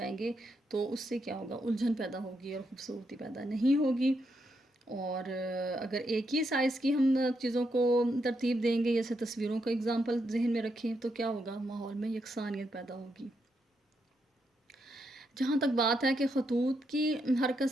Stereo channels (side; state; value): both; normal; correlation 0.81